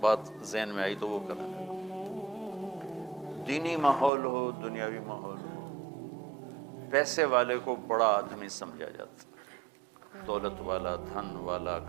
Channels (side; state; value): left; drops out; at 4.1 s